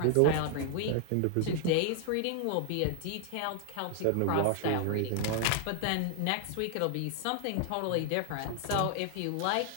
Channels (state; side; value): different; both; correlation 0.00